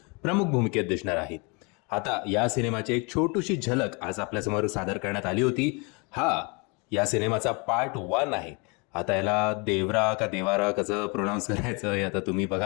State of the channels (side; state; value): right; quieter; 30.9 dB